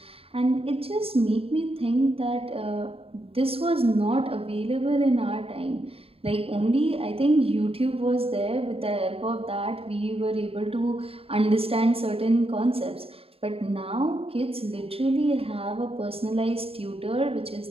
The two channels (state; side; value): late; left; 0.28 ms